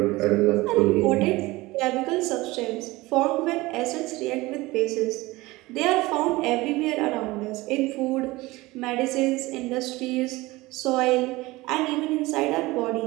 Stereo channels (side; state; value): left; quieter; 20.6 dB